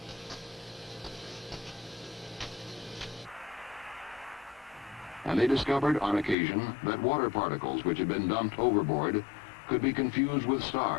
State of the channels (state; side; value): drops out; right; at 6.4 s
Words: And they discovered on occasion that water particles which had been dumped overboard could be confused with